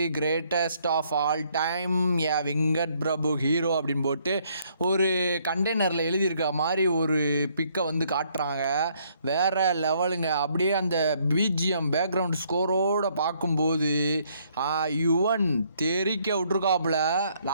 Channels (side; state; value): both; inverted; correlation -0.68